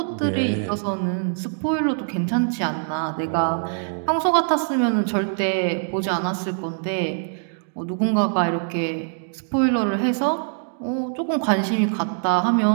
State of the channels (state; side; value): silent; left; digital silence